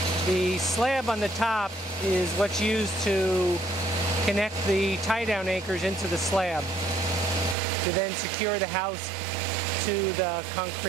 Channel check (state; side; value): drops out; left; at 7.6 s